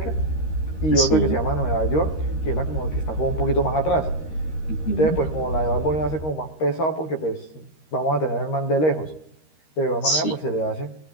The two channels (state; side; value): late; right; 13 ms